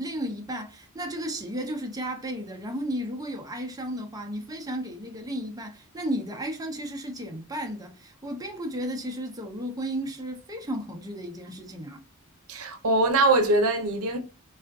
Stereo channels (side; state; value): both; normal; correlation 0.13